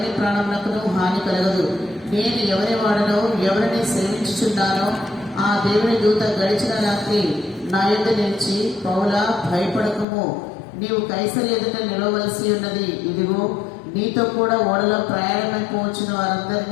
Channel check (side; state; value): right; drops out; at 10.1 s